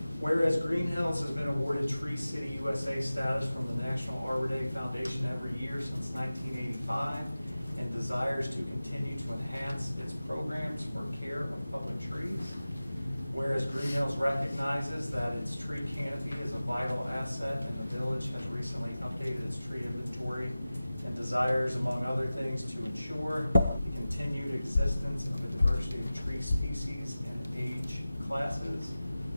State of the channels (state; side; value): inverted; both; correlation -0.96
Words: Whereas Greenhills has been awarded Tree City USA status from the National Arbor Day Foundation every year since 1985 and desires to continue to enhance its programs for care of public trees. Whereas Greenhills recognizes that its tree canopy is a vital asset and the village has recently updated its tree inventory and desires, among other things, to ensure the continued existence of a diversity of tree species and age classes.